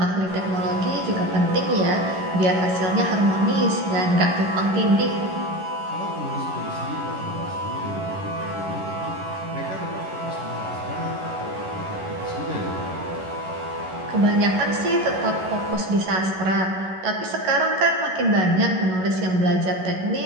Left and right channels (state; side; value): late; left; 11 ms